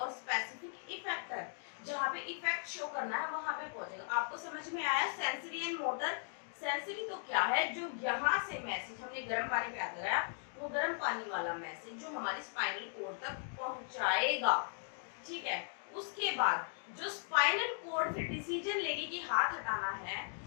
specific effector, जहाँ पे effect show करना है वहां पे पहुंचेगा। आपको समझ में आया? Sensory and motor. सेंसरी तो क्या है? जो यहाँ से मैसेज हमने गर्म पानी पे लगाया, वो गर्म पानी वाला मैसेज जो हमारी स्पाइनल कॉर्ड तक पहुंचाएगा। ठीक है, उसके बाद जो स्पाइनल कॉर्ड फिर डिसीजन लेगी कि हाथ हटाना है,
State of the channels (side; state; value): right; silent; 53 dB below the other